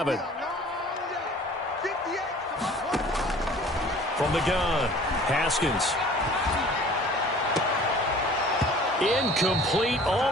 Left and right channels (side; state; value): both; normal; correlation 0.48